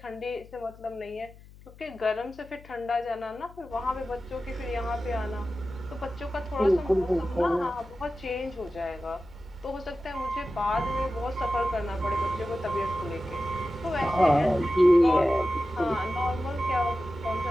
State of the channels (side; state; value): left; noise; hum, 21 dB below the sound